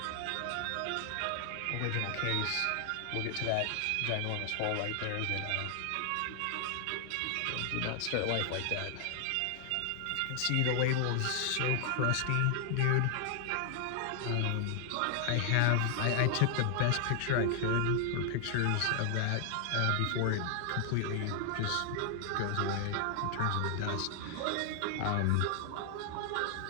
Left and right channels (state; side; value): different; both; correlation 0.00